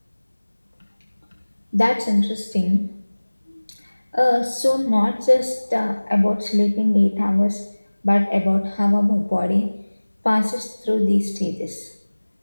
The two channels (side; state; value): both; inverted; correlation -1.00